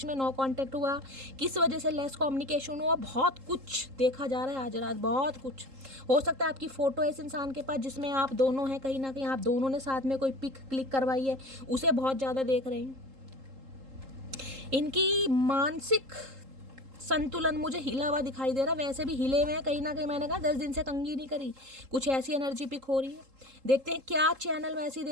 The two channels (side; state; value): left; late; 3.8 ms